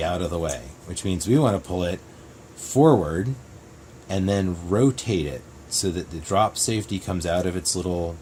out of the way, which means we want to pull it forward and then rotate it so that the drop safety comes out of its little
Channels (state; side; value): identical; both; correlation 1.00